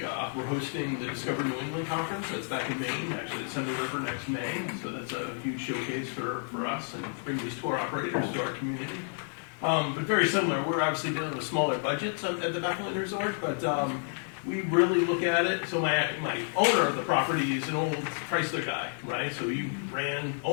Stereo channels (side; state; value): right; silent; 58 dB below the other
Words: hosting the Discover New England Conference. That's back in Maine, actually it's Thunder River next May. So that's a huge showcase for us and bring these tour operators to our community. But very similar, we're obviously dealing with smaller budgets at the Bethel Area Resort, but we really look at it. So my owner of the property is an old Chrysler guy, right? So he ran